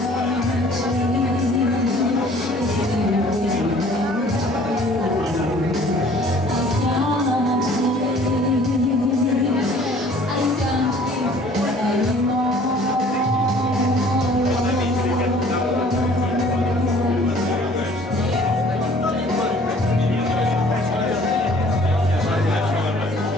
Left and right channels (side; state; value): both; normal; correlation 0.53